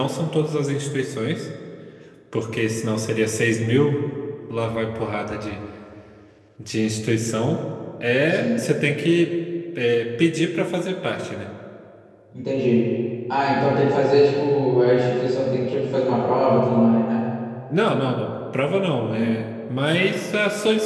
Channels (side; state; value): both; identical; correlation 1.00